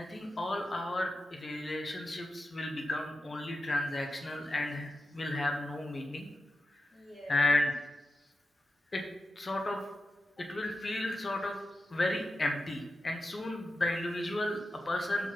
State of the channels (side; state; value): both; normal; correlation 0.90